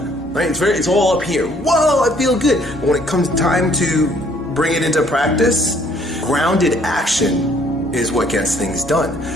right? It's all up here. Whoa, I feel good. But when it comes time to bring it into practice, grounded action is what gets things done.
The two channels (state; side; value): normal; both; correlation 0.62